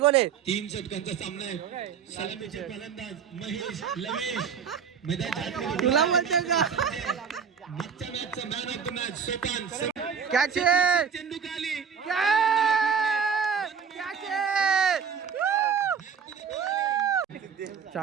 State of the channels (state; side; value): quieter; left; 6.8 dB